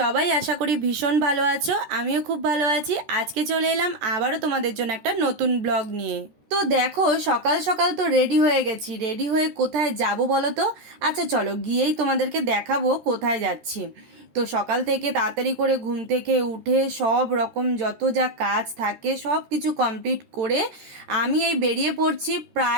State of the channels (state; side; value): late; left; 13 ms